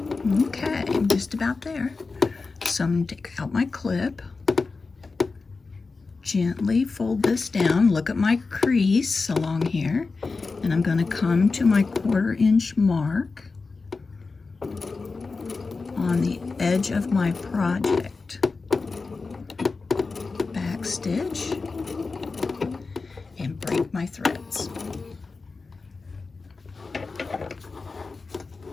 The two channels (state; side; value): quieter; right; 4.1 dB